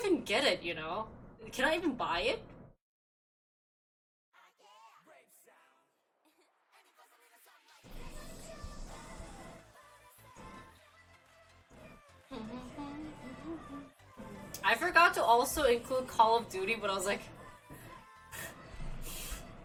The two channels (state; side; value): identical; both; correlation 1.00